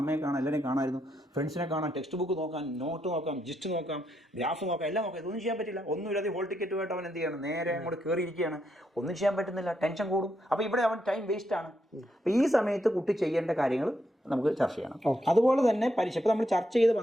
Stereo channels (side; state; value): both; normal; correlation 0.79